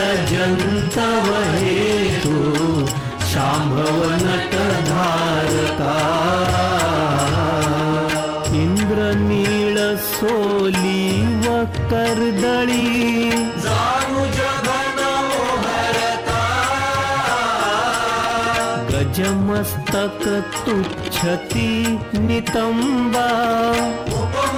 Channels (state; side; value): identical; both; correlation 1.00